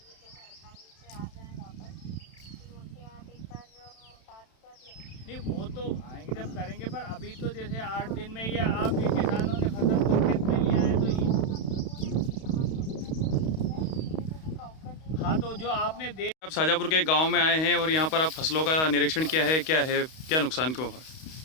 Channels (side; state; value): right; late; 31 ms